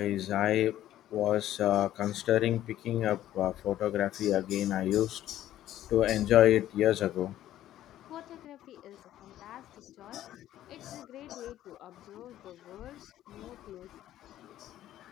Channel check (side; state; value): right; quieter; 12.9 dB